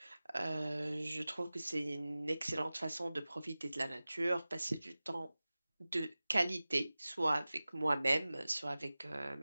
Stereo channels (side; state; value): both; inverted; correlation -0.97